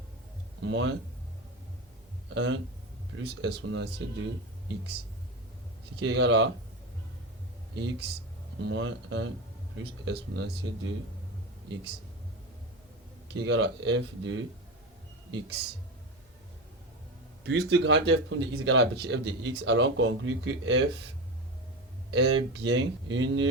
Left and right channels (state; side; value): normal; both; correlation 0.22